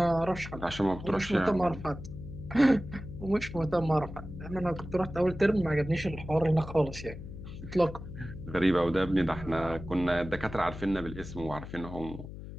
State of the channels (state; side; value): noise; left; hum, 11 dB below the sound